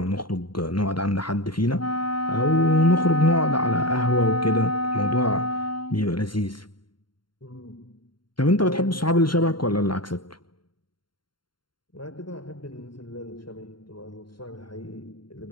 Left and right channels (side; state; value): right; late; 0.72 ms